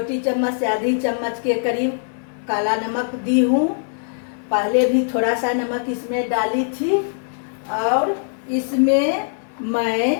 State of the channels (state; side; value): silent; right; 61 dB below the other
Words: चम्मच से आधी चम्मच के करीब काला नमक दी हूँ। पहले भी थोड़ा सा नमक इसमें डाली थी। और इसमें